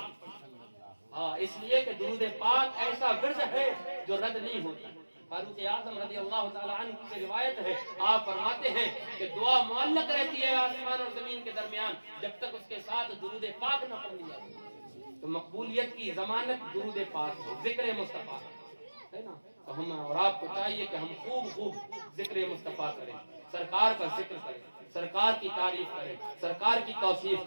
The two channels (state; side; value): inverted; both; correlation -1.00